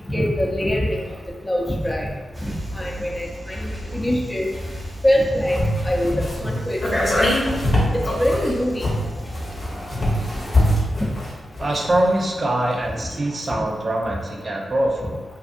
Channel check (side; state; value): both; normal; correlation 0.91